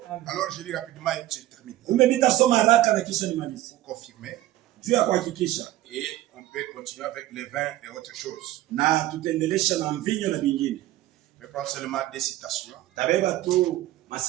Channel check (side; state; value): left; quieter; 14.9 dB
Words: Alors je lis rapidement et je termine. Umepita soma haraka na kisha nimalize. Pour confirmer. Juu ya kuhakikisha. Et on peut continuer avec les vins et autres choses. Na tutaendelesha na mvinyo na vingine. Je prends seulement 2 citations. Tabeba tu